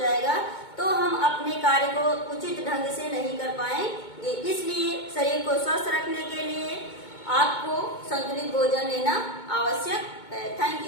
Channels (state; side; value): late; right; 2.2 ms